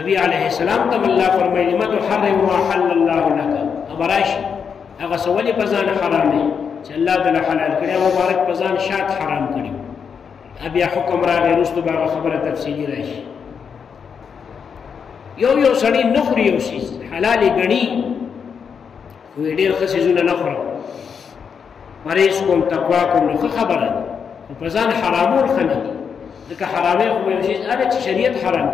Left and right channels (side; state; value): right; quieter; 6.6 dB